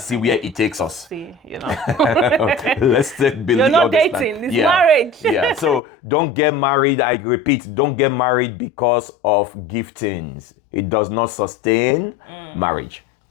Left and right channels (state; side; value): drops out; right; at 5.8 s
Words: where it takes us. Let's believe. You're not dating, it's marriage. So don't get married, I repeat, don't get married because of giftings. It does not sustain marriage.